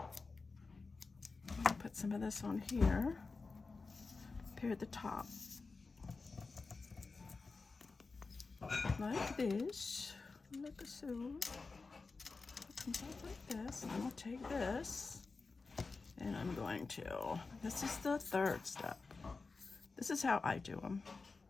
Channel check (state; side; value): quieter; right; 4.1 dB